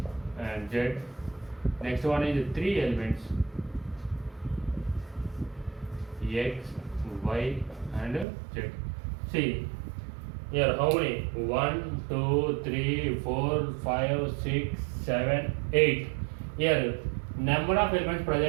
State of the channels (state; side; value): drops out; left; at 8.2 s